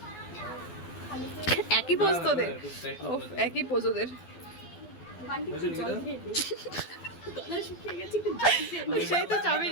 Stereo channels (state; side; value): late; right; 12 ms